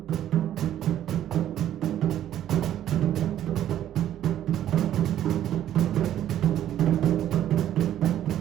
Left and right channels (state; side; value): quieter; left; 11.6 dB